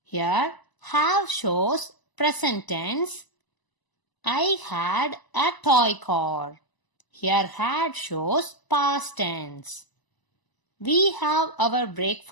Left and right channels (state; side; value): late; right; 1.0 ms